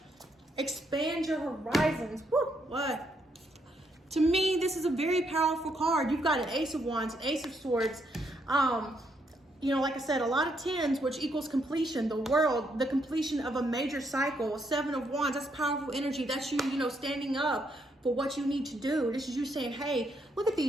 Expand your horizons. Whoop, what? To me, this is a very powerful card. You've got an Ace of Wands, an Ace of Swords. You know, like I said, a lot of 10s, which equals completion, the World, the completion of a major cycle, 7 of Wands, that's powerful energy. That's you, you know, standing up for what you need to do. This is you saying, hey, look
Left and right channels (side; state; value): both; normal; correlation 0.75